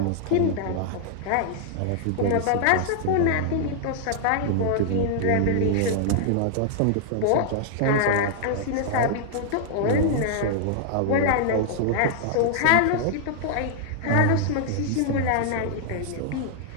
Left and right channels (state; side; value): different; both; correlation -0.01